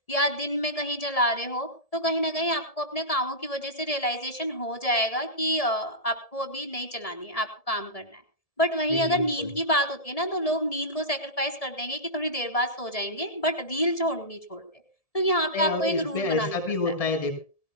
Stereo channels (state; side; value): late; right; 1.7 ms